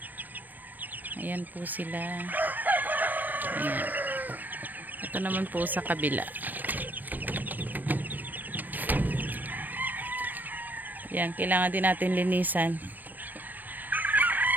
Ayan po sila. Ayan. Ito naman po sa kabila. Yan, kailangan din natin linisan.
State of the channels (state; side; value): late; left; 0.088 ms